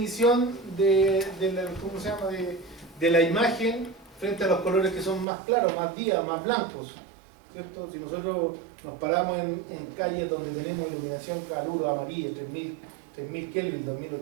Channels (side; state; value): left; drops out; at 5.2 s